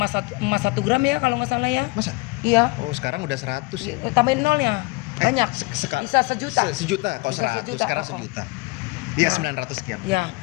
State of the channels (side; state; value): right; quieter; 25.2 dB